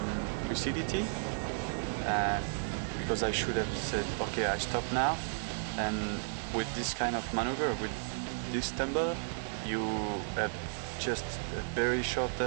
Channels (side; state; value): left; silent; digital silence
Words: lucidity, because I should have said, okay, I stop now. And with this kind of maneuver, with this tumble, you have just a very short